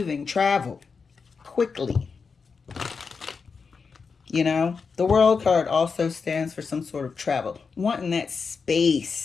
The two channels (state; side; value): quieter; right; 5.2 dB